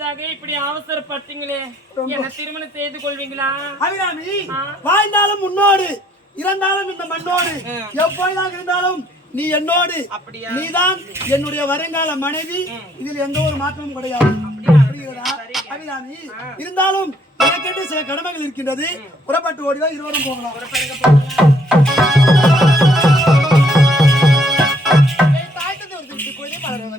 இப்படி அவசரப்பட்டீங்களே, என்ன திருமணம் செய்து கொள்வீங்களா? அபிராமி, வாழ்ந்தாலும் முன்னோடு இருந்தாலும் இந்த மண்ணோடு எப்பொழுதாக இருந்தாலும் நீ என்னோடு, அப்படியா? நீதான் என்னுடைய வருங்கால மனைவி. இதில் எந்த ஒரு மாற்றமும் கிடையாது. புரிகிறதா அபிராமி? இருந்தாலும் எனக்கென்று சில கடமைகள் இருக்கின்றது. புறப்பட்டு ஓடிதான் இருவரும் போகலாம்.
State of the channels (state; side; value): normal; both; correlation 0.66